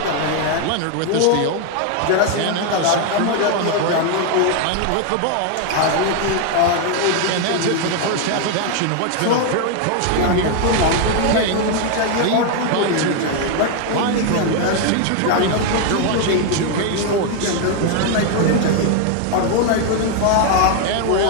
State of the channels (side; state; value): both; different; correlation 0.00